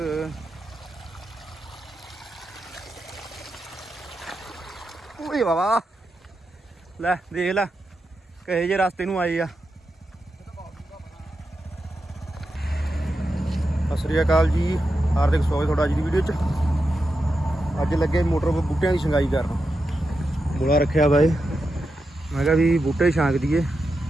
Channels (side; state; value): both; normal; correlation 0.88